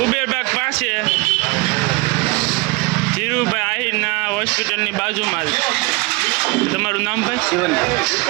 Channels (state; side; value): quieter; left; 25.7 dB